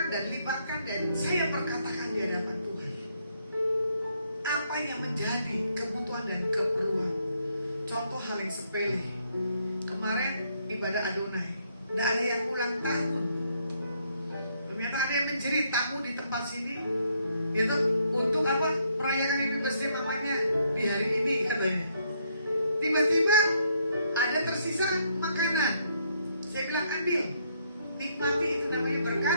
dan libatkan dan saya perkatakan di hadapan Tuhan. Apa yang menjadi kebutuhan dan keperluan. Contoh hal yang sepele. Kemarin ibadah Adonai, tidak ada yang ulang tahun. Ternyata ada yang menjerit tamu di tempat sini, gitu, untuk apa? Merayakan anniversary mamanya di hari ini katanya. Tiba-tiba ada tersisa makanan. Saya bilang ambil, nikmati, itu namanya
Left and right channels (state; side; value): inverted; both; correlation -0.72